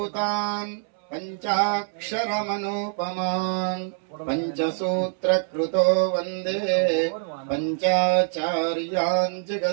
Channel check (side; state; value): left; silent; 62 dB below the other